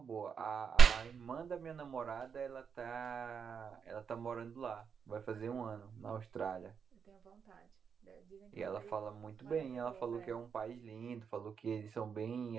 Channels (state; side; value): quieter; left; 6.6 dB